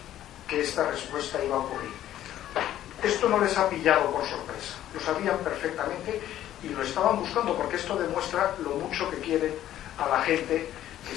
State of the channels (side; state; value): right; quieter; 12.4 dB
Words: que esta respuesta iba a ocurrir. Esto no les ha pillado por sorpresa, lo sabían perfectamente y lo estaban buscando, porque esto demuestra lo mucho que quieren a la gente que